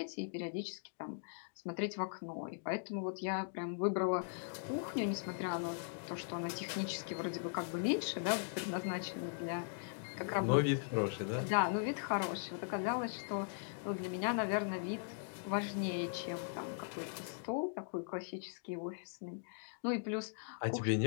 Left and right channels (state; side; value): silent; right; digital silence